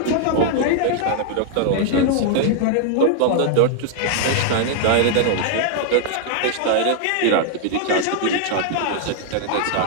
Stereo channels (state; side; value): different; both; correlation -0.01